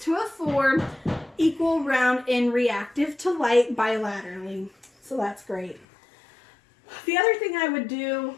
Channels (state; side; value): drops out; right; at 5.9 s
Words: a 4. Equal, round, and reactive to light bilaterally. So that's great. The other thing I would do